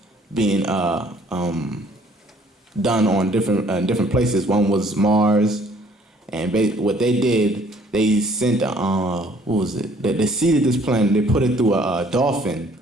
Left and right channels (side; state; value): both; normal; correlation 0.59